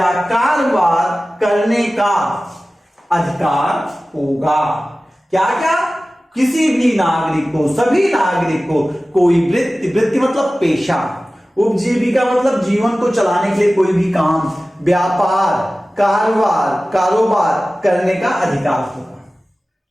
कारोबार करने का अधिकार होगा। क्या क्या, किसी भी नागरिक को, सभी नागरिक को कोई वृत्ति, वृत्ति मतलब पेशा, उपजीविका मतलब जीवन को चलाने के लिए कोई भी काम, व्यापार, कारोबार करने का अधिकार होगा।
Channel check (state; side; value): normal; both; correlation 0.96